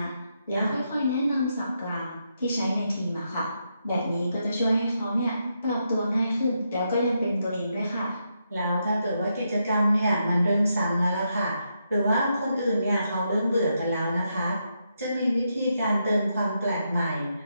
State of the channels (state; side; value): inverted; both; correlation -0.82